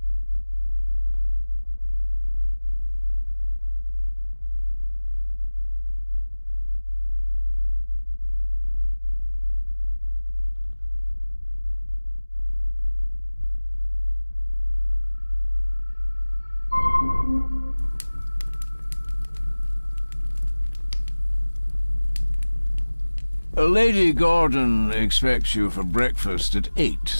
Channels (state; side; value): inverted; both; correlation -1.00